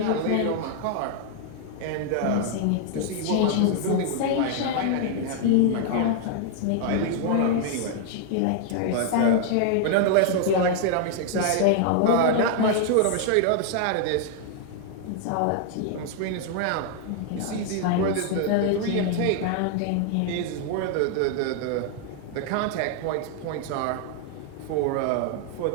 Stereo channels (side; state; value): both; different; correlation 0.00